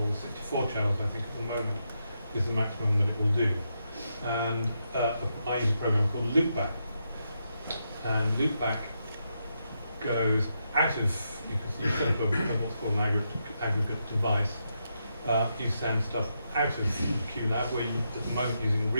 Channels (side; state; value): both; inverted; correlation -0.83